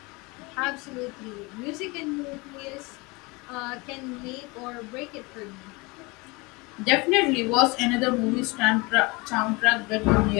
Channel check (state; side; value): quieter; right; 25.6 dB